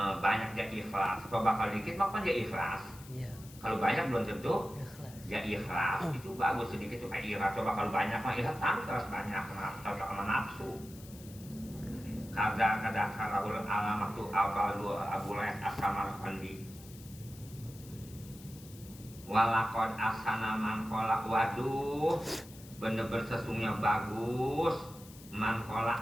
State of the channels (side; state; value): left; noise; hiss, 19 dB below the sound